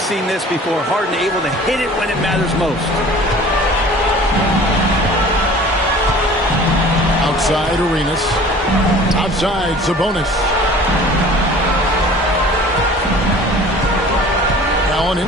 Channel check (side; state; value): both; normal; correlation 0.46